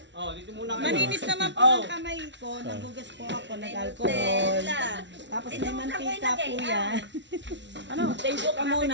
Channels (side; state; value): left; late; 0.52 ms